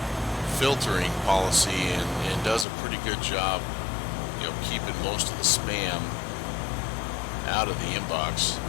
filtering policy and does a pretty good job, you know, keeping most of the spam out of the inbox,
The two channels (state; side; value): drops out; right; at 2.7 s